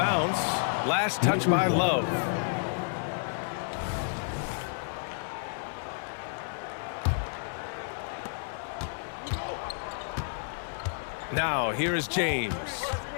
Last touch by Love. Now here is James.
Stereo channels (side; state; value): right; silent; digital silence